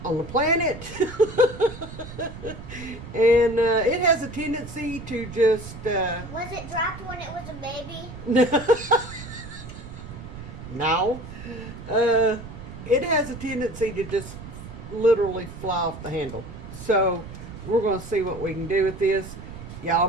on the planet. And it has a tendency to just... Was it dropped when it was a baby? No. It has a tendency to just literally fly off the handle. So we're going to see what we can do with this. Y'all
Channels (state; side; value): noise; right; rumble, 12 dB below the sound